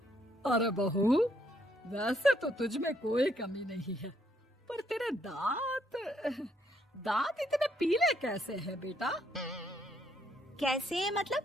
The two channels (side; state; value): both; normal; correlation 0.72